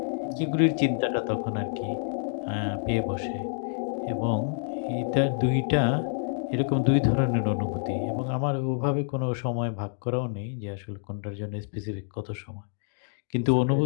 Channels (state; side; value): silent; right; digital silence